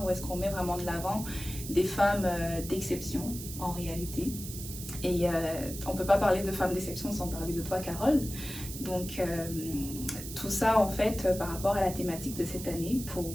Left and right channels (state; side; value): noise; right; hiss, 10 dB below the sound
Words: où est-ce qu'on met vraiment de l'avant des femmes d'exception en réalité. Et on ne peut pas parler de femmes d'exception sans parler de toi, Carole. Donc, tout ça, en fait, par rapport à la thématique de cette année, pour